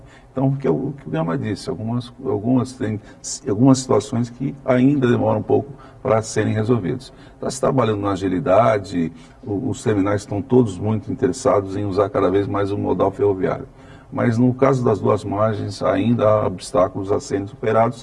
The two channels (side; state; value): both; identical; correlation 1.00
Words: Então, o que o Gama disse, algumas situações que ainda demoram um pouco para serem resolvidas. Está se trabalhando na agilidade, os terminais estão todos muito interessados em usar cada vez mais o modal ferroviário. Mas no caso das duas margens, ainda há obstáculos a serem superados